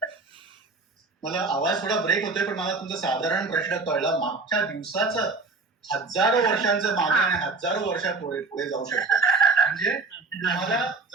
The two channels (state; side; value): quieter; left; 3.9 dB